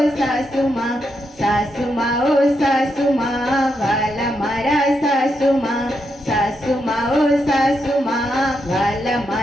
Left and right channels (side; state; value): both; normal; correlation 0.82